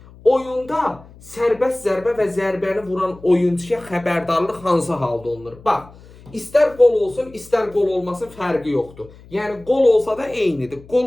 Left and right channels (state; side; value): noise; left; hum, 22 dB below the sound